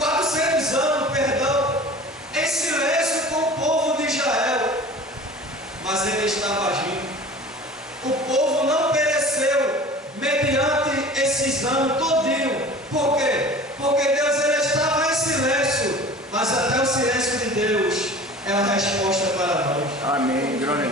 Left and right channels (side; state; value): both; normal; correlation 0.41